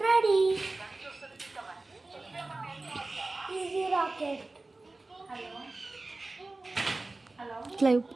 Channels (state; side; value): quieter; left; 3.2 dB